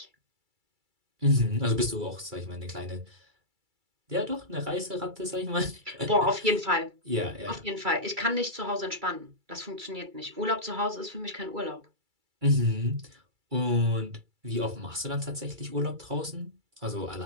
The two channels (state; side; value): late; left; 2.3 ms